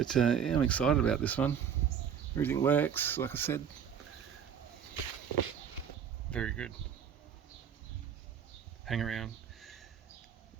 yeah, I'm excited about this one. Everything works, like I said. Very good. Hang around.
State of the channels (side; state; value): left; quieter; 8.1 dB